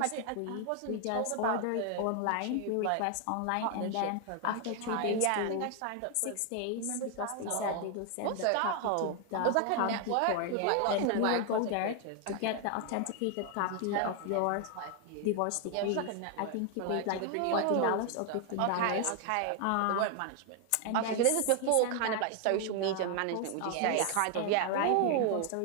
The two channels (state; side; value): different; both; correlation 0.00